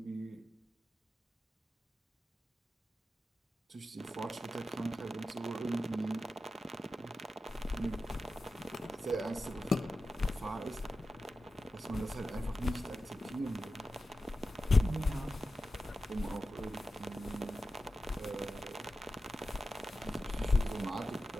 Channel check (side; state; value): both; normal; correlation 0.92